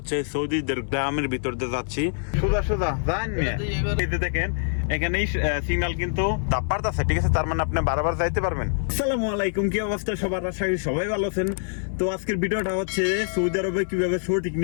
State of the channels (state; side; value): silent; right; 61 dB below the other